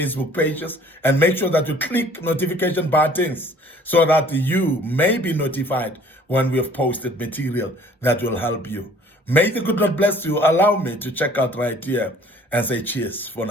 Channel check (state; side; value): normal; both; correlation 0.54